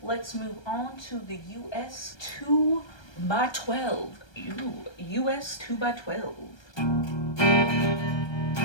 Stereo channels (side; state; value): right; late; 1.3 ms